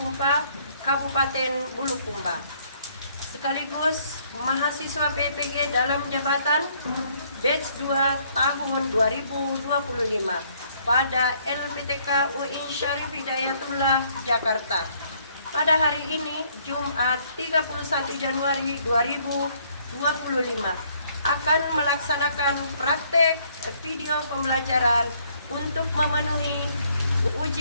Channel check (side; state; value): both; inverted; correlation -0.66